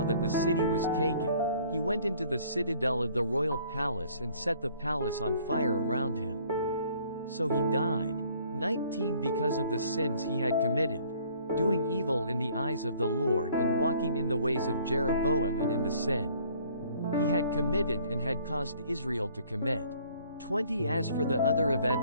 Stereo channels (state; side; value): inverted; both; correlation -0.58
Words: that the city was taken, he went into the citadel of the royal palace and set the palace on fire around him. So he died. 19 Because of the sins he had committed, doing evil in the eyes of the Lord and walking in the ways of Jeroboam and in the sin he had committed and had caused Israel to commit. 20 As for the other